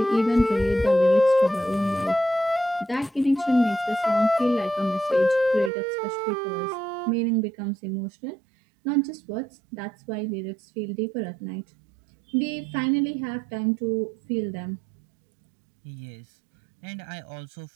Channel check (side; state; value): left; drops out; at 5.7 s